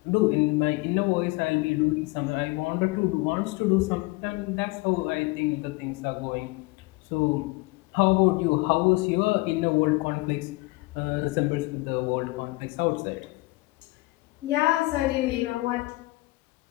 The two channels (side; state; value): right; quieter; 23.0 dB